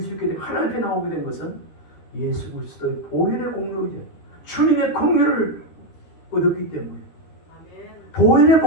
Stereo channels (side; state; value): right; late; 13 ms